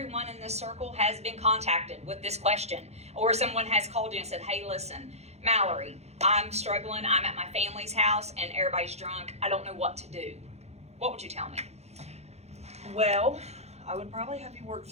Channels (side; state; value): left; late; 0.31 ms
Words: in this circle has been contacted with this question, or someone has called you and said, hey, listen, Mallory, I'm struggling. I'm at my family's house and everybody's drunk. I don't know what to do. What would you tell me? Well, I would probably have you work